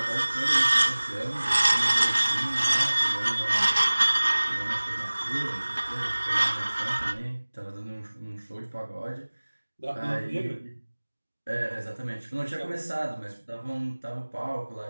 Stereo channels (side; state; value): both; inverted; correlation -1.00